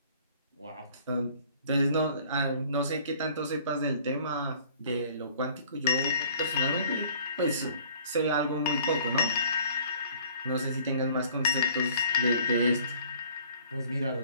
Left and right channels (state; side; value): inverted; both; correlation -0.53